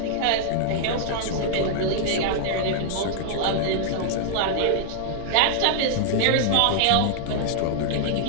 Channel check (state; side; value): different; both; correlation -0.01